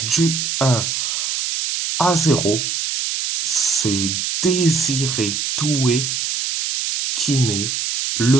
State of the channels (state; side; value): noise; right; hiss, 2 dB below the sound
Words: du 1-0. C'est Désiré Doué qui met